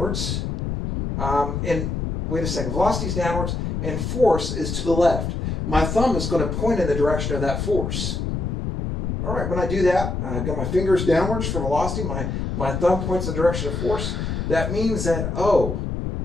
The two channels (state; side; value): noise; left; rumble, 3 dB below the sound